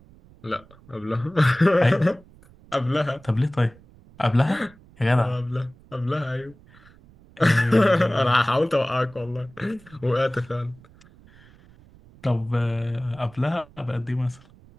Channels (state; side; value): noise; right; rumble, 25 dB below the sound